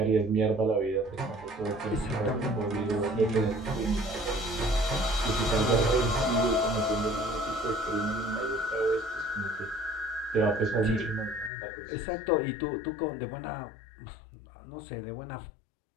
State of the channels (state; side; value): drops out; right; at 11.5 s